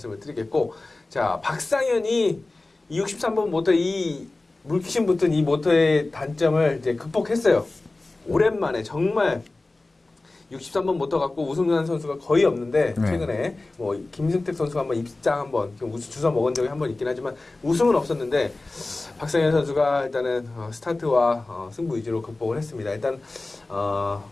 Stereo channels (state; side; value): quieter; right; 3.1 dB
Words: 드리겠고 자 박상현이 63번 모터 이 물귀신 붙은 이 모터의 단점을 이제 극복했어요. 오랜만에 정말 63번 모터 갖고 우승한 선수가 거의 없는데 최근에 뭐 김승택 선수가 한번 입장 한번 주워 먹은 적이 한번 있긴 하지만 우승은 없었는데 박상현 선수가 일단은 스타트와 승부 위주로 극복을 했습니다. 일단